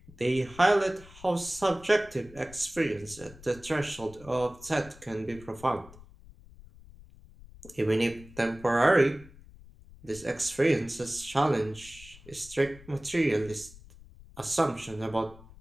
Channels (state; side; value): noise; left; rumble, 20 dB below the sound